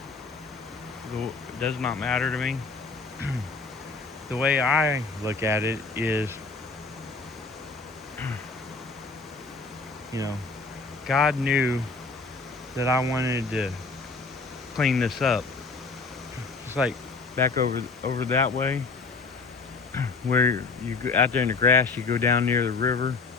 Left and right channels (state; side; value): quieter; right; 4.0 dB